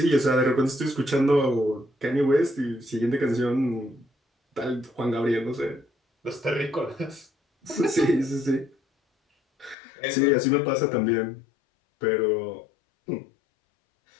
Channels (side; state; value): right; drops out; at 9.8 s